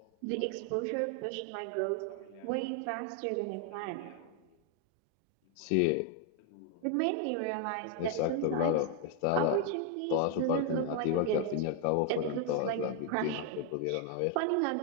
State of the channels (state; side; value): different; both; correlation 0.00